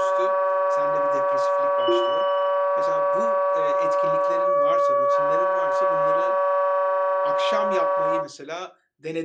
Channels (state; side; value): identical; both; correlation 1.00